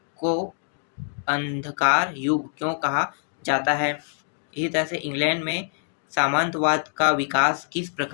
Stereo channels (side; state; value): right; silent; digital silence